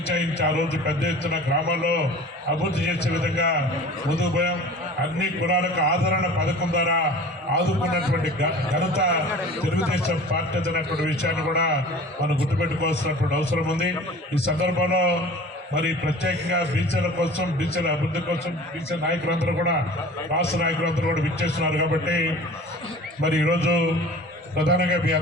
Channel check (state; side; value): normal; both; correlation 0.42